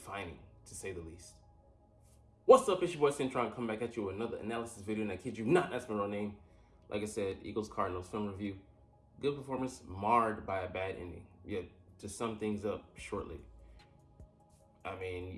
to say the least. What's up, it's your boy Centron, coming back at you with another analysis video, and I kid you not, that's my real name. Like I said, Eagles Cardinals Film Review. Good performance, marred by a bad ending. Yet, to sum things up shortly, I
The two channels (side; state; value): both; identical; correlation 1.00